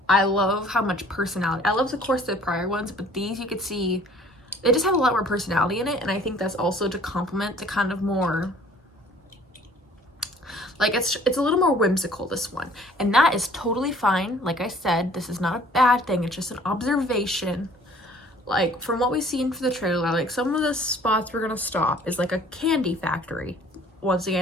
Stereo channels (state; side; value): normal; both; correlation 0.53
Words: I love how much personality. I love, of course, the prior ones, but these you could see, they just have a lot more personality in it, and I think that's also to complement the kind of more, like, it's a little more whimsical, this one. And that is totally fine. Like I said, this is not a bad thing. It's just an observation. Like, from what we've seen for the trailer, like, some of the spots we're gonna stop is like a candy factory. Once